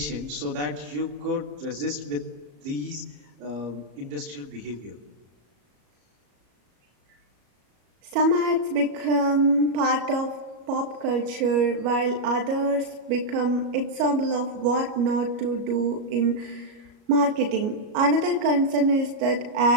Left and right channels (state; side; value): late; left; 34 ms